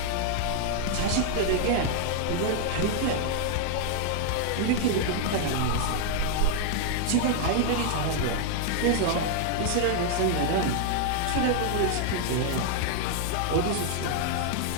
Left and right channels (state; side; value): different; both; correlation 0.00